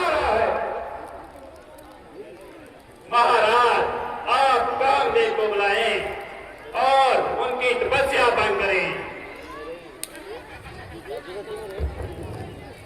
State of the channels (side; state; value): both; identical; correlation 1.00